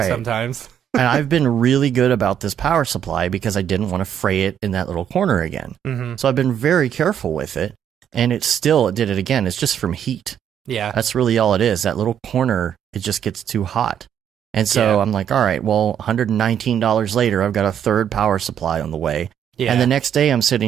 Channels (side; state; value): left; quieter; 9.2 dB